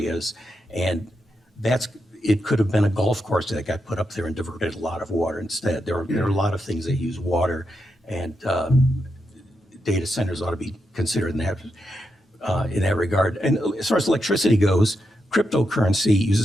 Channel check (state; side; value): normal; both; correlation 0.84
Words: And it could have been a golf course that got put up there and diverted a lot of water instead. There are a lot of things that use water, and data centers ought to be considered in that regard. And as far as electricity goes, cryptocurrency